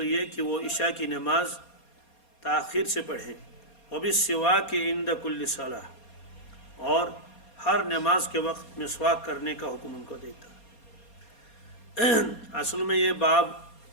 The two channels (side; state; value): right; late; 4.2 ms